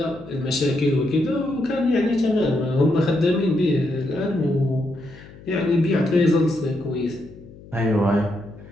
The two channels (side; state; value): left; noise; hum, 20 dB below the sound